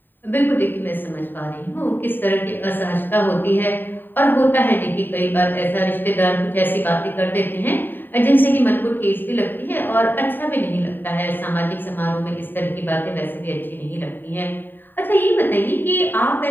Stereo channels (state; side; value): late; right; 0.092 ms